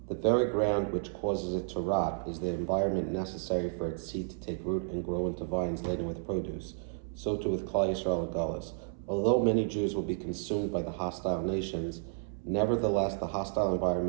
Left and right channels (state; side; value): silent; left; 56 dB below the other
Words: the very ground which causes it to rot is the environment necessary for its seed to take root and grow into vines laden with produce. So too with Klal Yisrael and Galus. Although many Jews will be consumed by the hostile nations, nevertheless the hostile